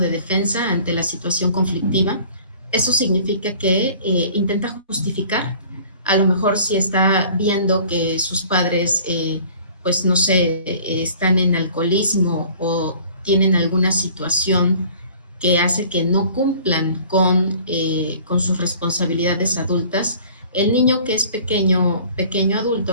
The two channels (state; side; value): inverted; both; correlation -0.50